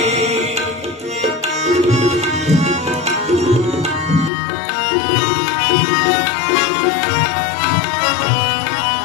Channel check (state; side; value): drops out; right; at 4.3 s